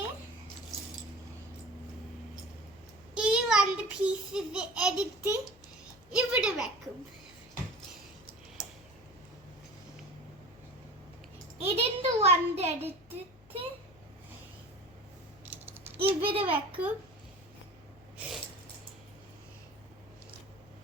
ഈ രണ്ട് പീസസ് എടുത്ത് ഇവിടെ വെക്കും. ഇതിന്റെ രണ്ട് എടുത്തിട്ട് ഇവിടെ വെക്കും.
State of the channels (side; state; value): left; noise; hum, 25 dB below the sound